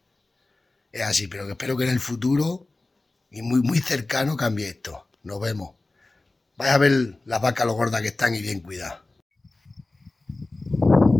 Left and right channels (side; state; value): right; quieter; 3.1 dB